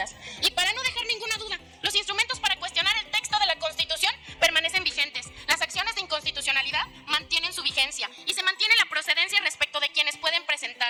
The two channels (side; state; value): both; identical; correlation 1.00